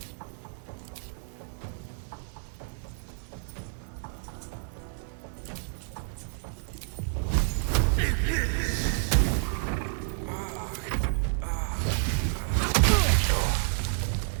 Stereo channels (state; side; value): silent; left; 58 dB below the other